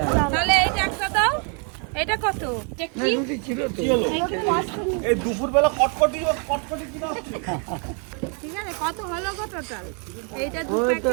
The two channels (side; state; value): left; quieter; 39.2 dB